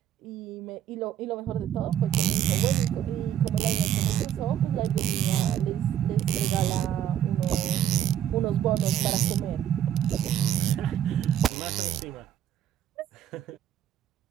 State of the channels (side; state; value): left; quieter; 10.5 dB